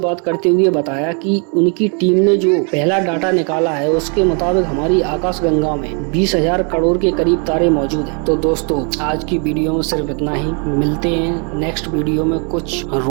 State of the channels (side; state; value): left; quieter; 38.2 dB